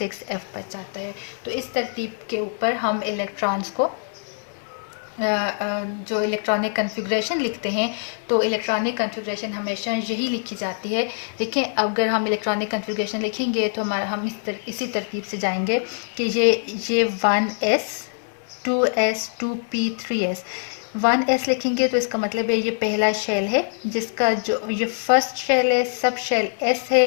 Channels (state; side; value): silent; right; digital silence